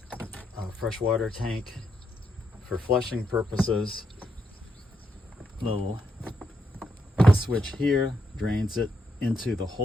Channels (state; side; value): normal; both; correlation 0.80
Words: freshwater tank for flushing purposes. Little switch here drains it into the